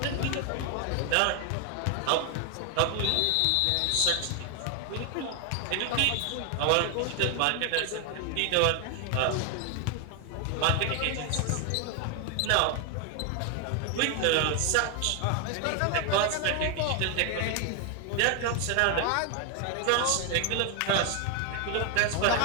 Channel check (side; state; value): both; different; correlation 0.01